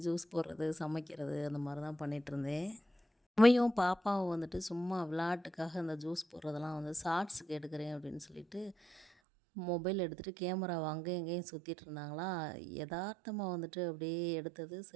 ஜூஸ் போடுறது, சமைக்கிறது அந்த மாதிரி தான் பண்ணிகிட்ருந்தேன். அம்மியும் பாப்பாவும் வந்துட்டு சும்மா விளையாட்டுக்காக அந்த ஜூஸ் போடுறதெல்லாம் வந்து ஷார்ட்ஸுக்கு எடுக்கிறேன் அப்படின்னு சொல்லிட்டு மொபைல் எடுத்துகிட்டு கேமராவை அங்கேயும் இங்கேயும் சுற்றிட்டு இருந்தாங்களா. எதார்த்தமாக வந்துட்டு அப்படியே எடுத்தது.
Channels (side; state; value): left; drops out; at 9.1 s